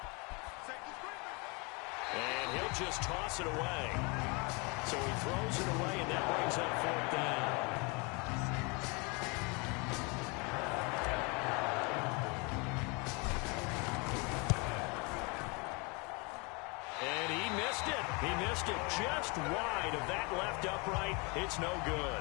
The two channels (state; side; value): quieter; right; 30.0 dB